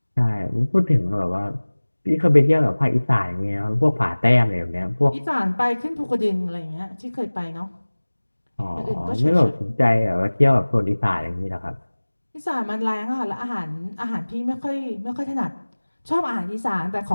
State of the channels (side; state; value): both; inverted; correlation -1.00